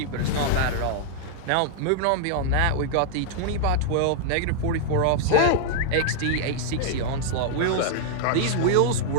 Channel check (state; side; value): different; both; correlation -0.01